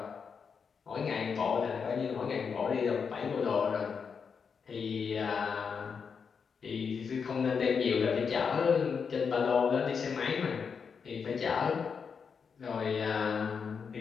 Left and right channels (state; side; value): quieter; right; 6.1 dB